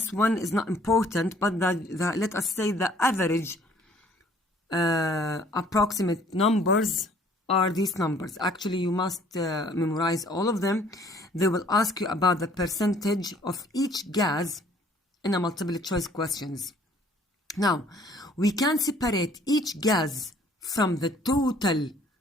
1 is not important, but let us say the average approximate numbers are these numbers. Actually, you must memorize all of them. They will ask you about the percentage of each gas in a multiple choice questions. Now, we can separate each gas from the total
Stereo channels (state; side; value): normal; both; correlation 0.58